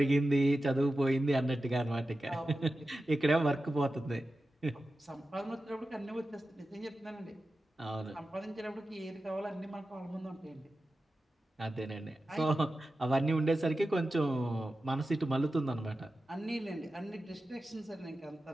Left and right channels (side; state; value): both; normal; correlation 0.93